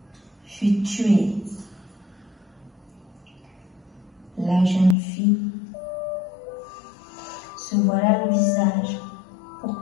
fut tué. La jeune fille se voila le visage pour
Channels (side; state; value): right; drops out; at 5.0 s